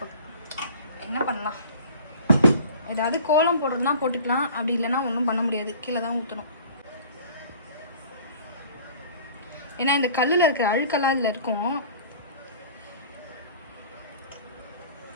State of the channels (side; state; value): both; inverted; correlation -0.45